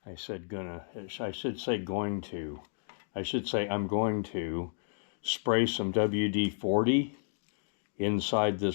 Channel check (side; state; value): right; silent; digital silence